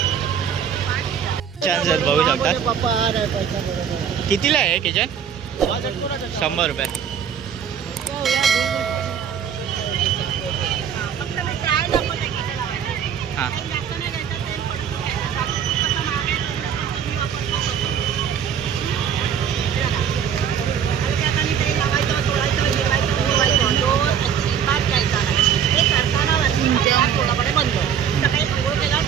छान बघू शकता. कितीला आहे किचन? 100 रुपये. हां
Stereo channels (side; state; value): left; quieter; 8.1 dB